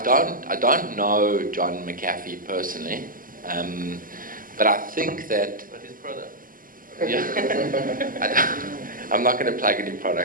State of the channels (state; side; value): late; left; 0.41 ms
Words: don't know John McAfee personally, but I think that. But his product. Yeah, I'm not going to plug any